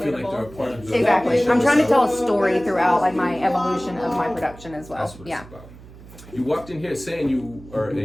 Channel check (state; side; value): noise; right; hum, 19 dB below the sound